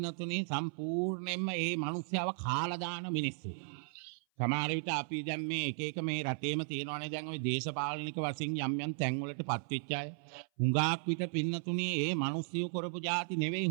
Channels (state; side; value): silent; left; 54 dB below the other